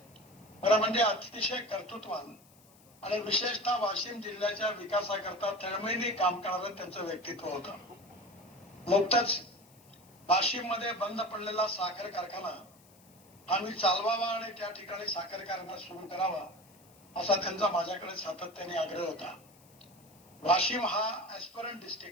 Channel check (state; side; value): noise; left; hiss, 27 dB below the sound